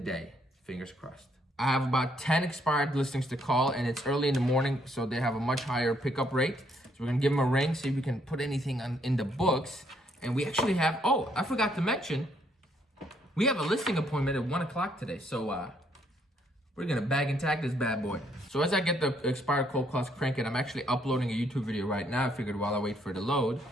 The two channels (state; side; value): normal; both; correlation 0.70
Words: Fingers crossed. I have about 10 expired listings to call, and it's early in the morning, so they have a much higher pickup rate. So we're gonna give them a ring, see if we can put anything in the books. And we actually have, oh, I forgot to mention, we have a listing appointment at 1 o'clock today. So we're gonna bag and tag this bad boy. So as I get the expired cold calls cranking, I'm actually uploading a YouTube video right now. I figured while I wait for it to load,